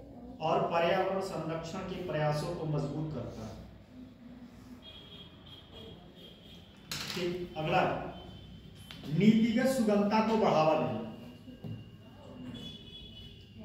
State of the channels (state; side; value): identical; both; correlation 1.00